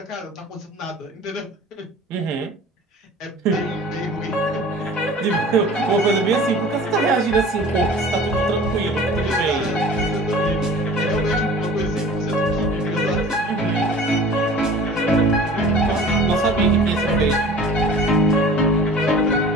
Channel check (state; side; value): normal; both; correlation 0.43